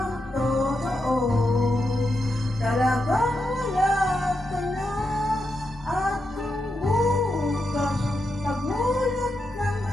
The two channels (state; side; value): normal; both; correlation 0.85